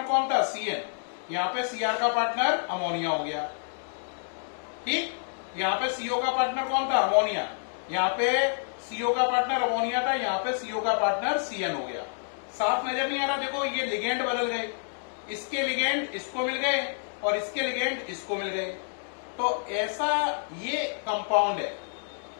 कौन था? सीएन। यहां पे सीआर का पार्टनर अमोनिया हो गया, ठीक। यहां पे सीओ का पार्टनर कौन था? अमोनिया। यहां पे सीओ का पार्टनर अमोनिया था, यहां पे सीओ का पार्टनर सीएन हो गया। साफ नजर नहीं आ रहा? देखो ये लिगेंड बदल गए, इसके लिगेंड इसको मिल गए और इसके लिगेंड इसको मिल गए। तो ऐसा ये कंपाउंड है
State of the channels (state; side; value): silent; right; digital silence